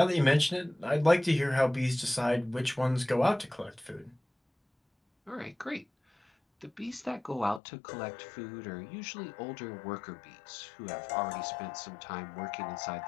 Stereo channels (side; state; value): right; drops out; at 7.6 s